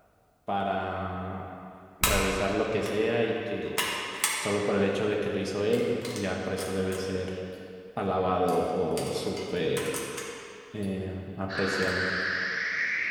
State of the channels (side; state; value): both; identical; correlation 1.00